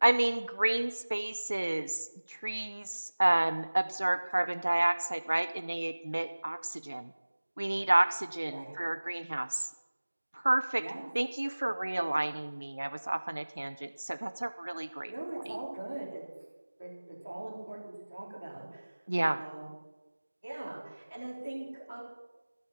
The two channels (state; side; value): inverted; both; correlation -1.00